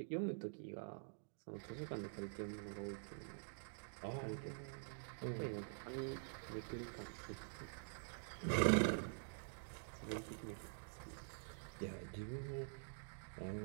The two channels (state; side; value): silent; left; digital silence